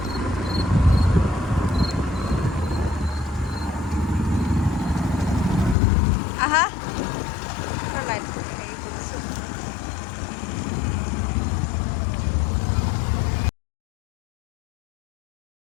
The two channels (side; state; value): right; drops out; at 5.8 s